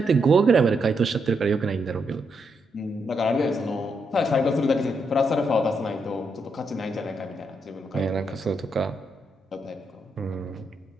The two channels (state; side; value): normal; both; correlation 0.80